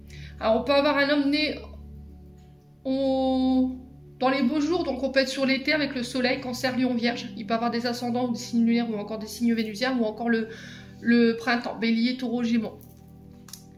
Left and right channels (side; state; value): both; identical; correlation 1.00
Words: Alors on peut avoir un homme né dans les beaux jours, donc on peut être sur l'été avec le soleil, cancer, lion, vierge. Il peut avoir des ascendants ou des signes lunaires ou encore des signes vénusiens ou encore le printemps, bélier, taureau, gémeaux.